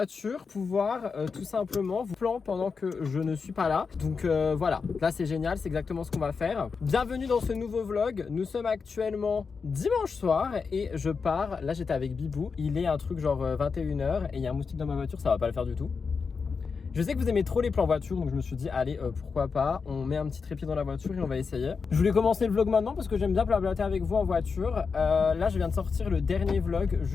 pour pouvoir tout simplement vous plan pendant que je ne suis pas là. Donc voilà, là c'est génial, c'est exactement ce qu'on va faire. Bienvenue dans ce nouveau vlog. Nous sommes actuellement dimanche soir et je pars. Là j'étais avec Bibou, il est un truc genre 21h et il y a un moustique dans ma voiture, ça va pas le faire du tout. Je sais que vous aimez trop les plans voiture, donc je me suis dit, allez, pourquoi pas, on met un petit trépied dans la voiture et on va essayer. Je voulais commencer le vlog maintenant parce que j'aime bien blablater avec vous en voiture. Là, je viens de sortir le dernier vlog,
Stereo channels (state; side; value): quieter; right; 5.2 dB